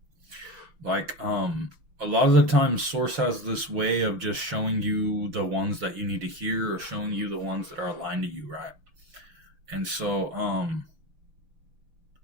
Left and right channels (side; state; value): left; late; 6.2 ms